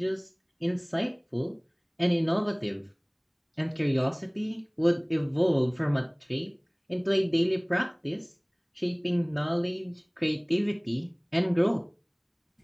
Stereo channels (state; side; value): identical; both; correlation 1.00